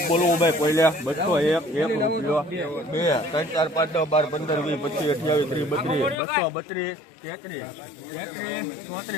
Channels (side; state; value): right; drops out; at 6.2 s